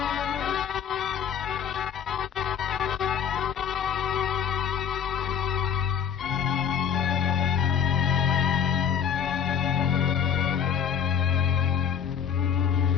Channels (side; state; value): right; quieter; 8.0 dB